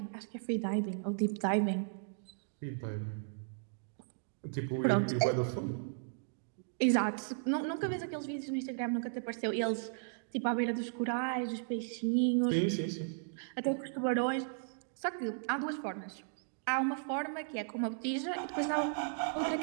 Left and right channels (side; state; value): left; silent; digital silence